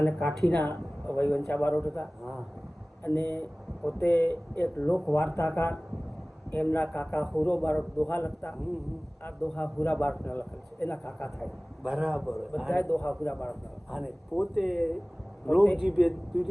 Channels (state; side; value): normal; both; correlation 0.98